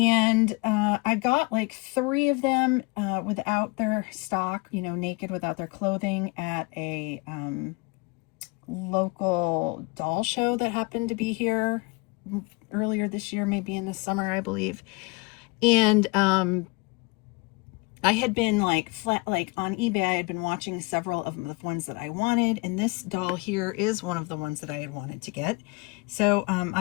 I got like 3 of them without their stock, you know, naked without their clothing, at a local doll show that happened to be here earlier this year, maybe in the summer, I believe. And I had been like on eBay, I had been watching several of the ones that I wanted, and this doll here is one of the ones that I had wanted to get. So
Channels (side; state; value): right; quieter; 26.9 dB